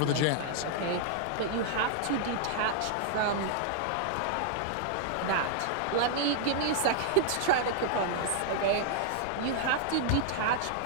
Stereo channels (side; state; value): both; different; correlation -0.01